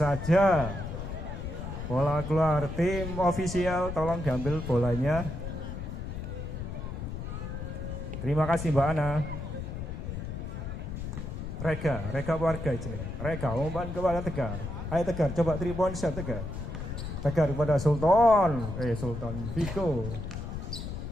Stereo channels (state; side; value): noise; left; rumble, 6 dB below the sound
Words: Bola keluar. Tim ofisial tolong diambil bolanya. Terima kasih Mbak Ana. Reka warga ini. Reka umpan kepada Tegar. Ayo Tegar, coba 3-point shot Tegar. Tegar kepada Sultan. Viko.